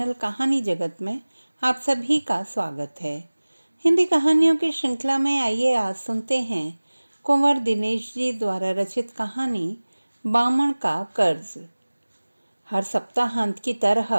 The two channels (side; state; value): both; inverted; correlation -1.00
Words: कहानी जगत में आप सभी का स्वागत है। हिंदी कहानियों की श्रृंखला में आइए आज सुनते हैं कुंवर दिनेश जी द्वारा रचित कहानी बामण का कर्ज। हर सप्ताहांत की